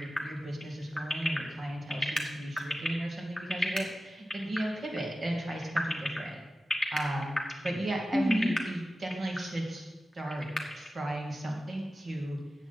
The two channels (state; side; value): normal; both; correlation 0.94